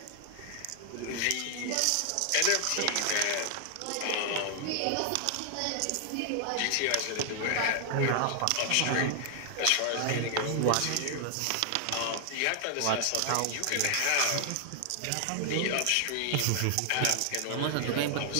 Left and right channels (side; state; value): both; different; correlation 0.00